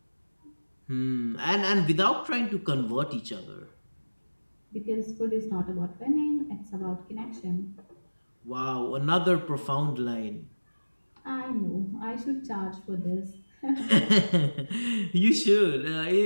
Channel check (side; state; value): both; inverted; correlation -1.00